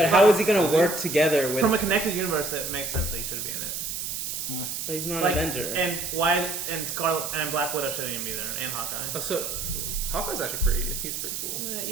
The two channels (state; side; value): noise; right; hiss, 4 dB below the sound